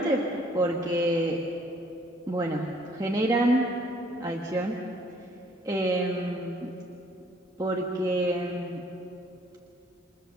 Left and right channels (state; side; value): normal; both; correlation 0.61